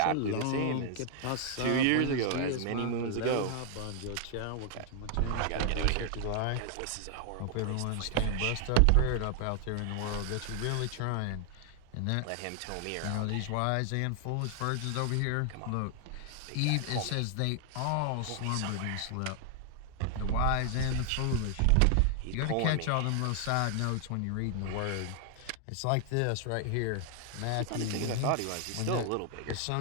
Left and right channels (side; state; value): both; different; correlation 0.00